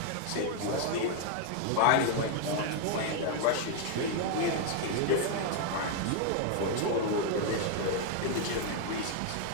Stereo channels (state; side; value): different; both; correlation 0.00